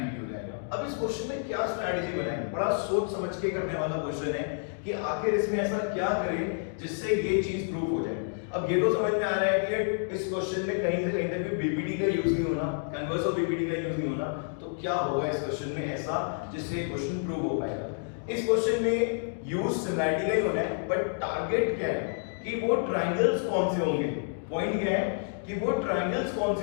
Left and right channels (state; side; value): silent; right; digital silence